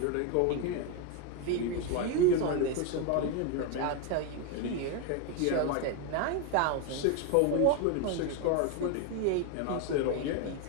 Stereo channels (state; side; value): different; both; correlation 0.02